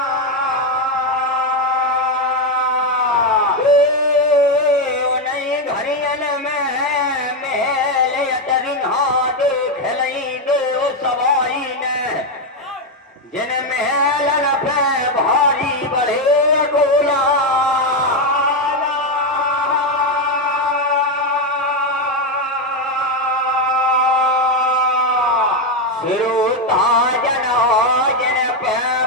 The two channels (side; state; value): both; normal; correlation 0.06